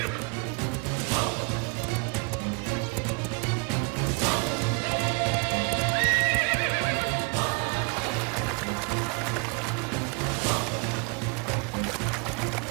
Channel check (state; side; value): quieter; left; 31.2 dB